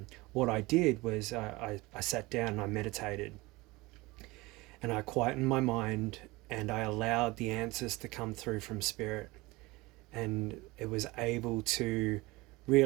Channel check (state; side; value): quieter; left; 22.0 dB